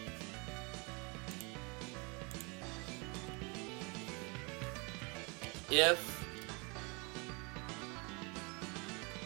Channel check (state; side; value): quieter; left; 30.0 dB